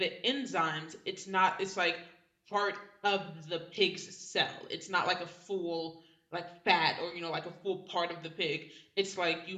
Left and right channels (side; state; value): both; identical; correlation 1.00